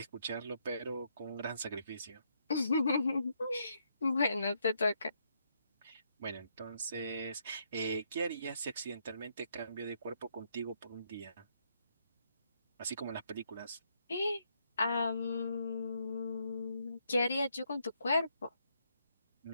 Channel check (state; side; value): inverted; both; correlation -0.75